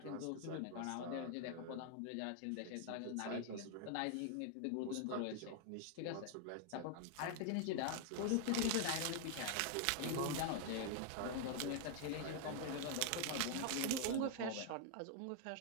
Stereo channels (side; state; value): both; different; correlation 0.00